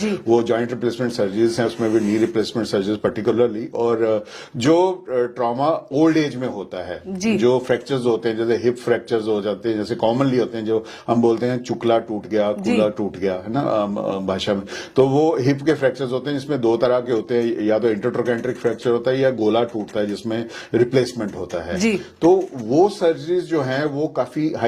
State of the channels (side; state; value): both; identical; correlation 1.00